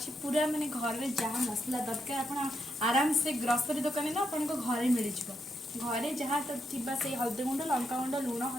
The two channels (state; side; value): normal; both; correlation 0.81